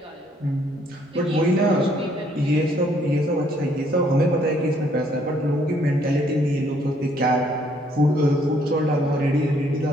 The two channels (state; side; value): normal; both; correlation 0.66